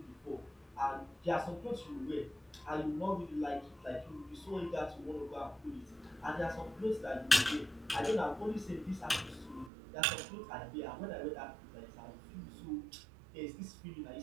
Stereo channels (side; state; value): left; drops out; at 9.7 s